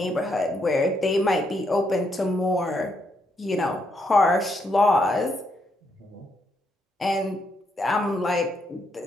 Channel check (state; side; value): normal; both; correlation 0.77